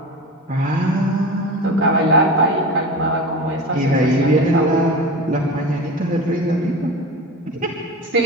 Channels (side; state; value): both; normal; correlation 0.30